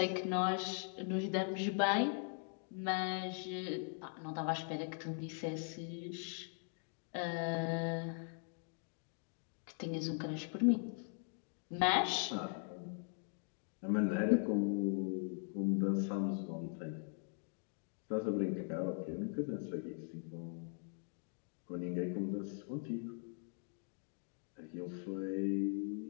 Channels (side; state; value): right; silent; 51 dB below the other